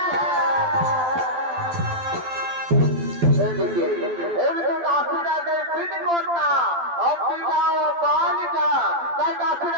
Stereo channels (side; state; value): left; late; 12 ms